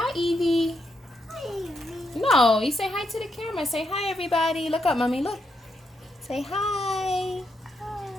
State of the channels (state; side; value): normal; both; correlation 0.80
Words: Evie. Hi, Evie. No, you say hi to the camera. Say hi everybody. Look up, mommy. Look. Say hi.